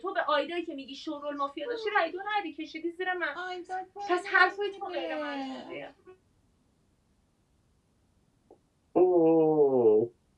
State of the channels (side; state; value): both; identical; correlation 1.00